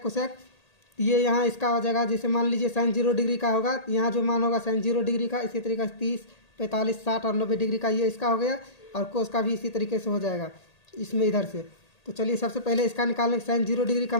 cosec. ये यहाँ इसका हो जाएगा, जैसे मान लीजिए साइन 0 डिग्री का होगा, यहाँ जो मान होगा साइन 0 डिग्री का, इसी तरीके से 30, 45, 60 और 90 डिग्री का ये इसका हो गया। और कोस का भी इसी तरीके से हो जाएगा इसमें इधर से। तो चलिए सबसे पहले इसका निकालने, साइन 0 डिग्री का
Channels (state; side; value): late; right; 1.8 ms